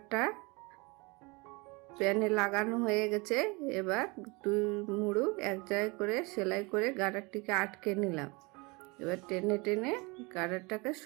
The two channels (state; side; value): quieter; left; 27.1 dB